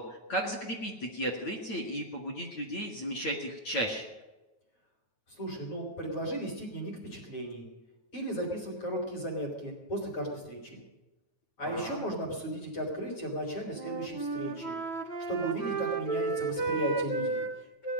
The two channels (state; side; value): late; right; 9.2 ms